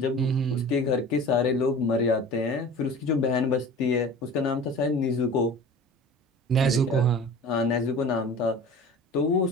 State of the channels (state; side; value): normal; both; correlation 0.39